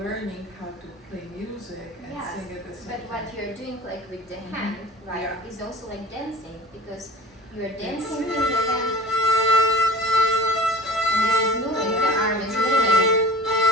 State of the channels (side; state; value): both; normal; correlation 0.42